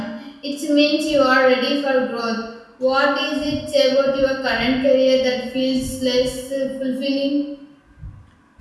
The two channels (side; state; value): both; identical; correlation 1.00